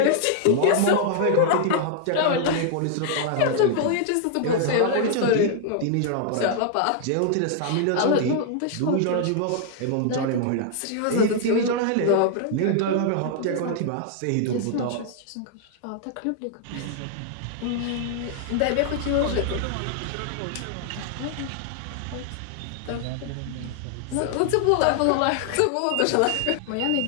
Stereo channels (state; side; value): different; both; correlation -0.01